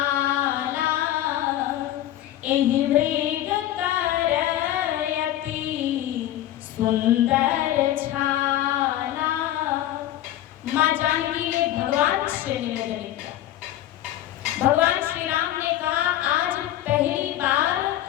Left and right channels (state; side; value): quieter; right; 13.2 dB